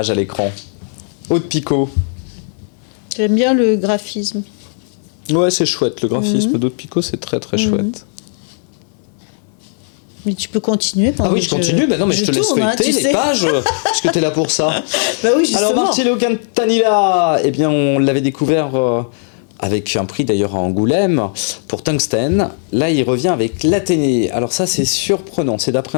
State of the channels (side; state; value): right; silent; digital silence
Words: à l'écran. Aude Picot. J'aime bien le graphisme. Ouais, c'est chouette. Le graphisme d'Aude Picot, c'est très très chouette. Mais tu peux continuer pendant Ah oui, que je continue. Mais non, mais je te laisse tourne, feuilleter tu les sais. pages, puisque t'es là pour ça. Bah oui, justement. Alors Marcello Cantanilla, eh bien on l'avait découvert avec un prix d'ailleurs à Angoulême pour Tungsten. Là, il revient avec l'Athénée. Alors ça, c'est surprenant. C'est